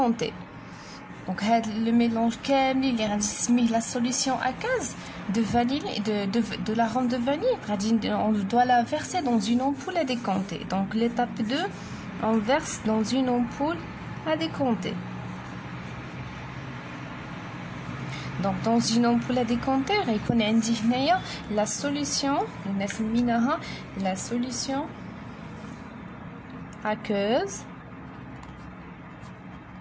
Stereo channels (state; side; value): identical; both; correlation 1.00